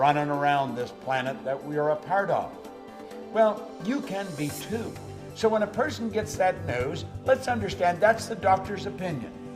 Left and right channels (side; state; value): both; identical; correlation 1.00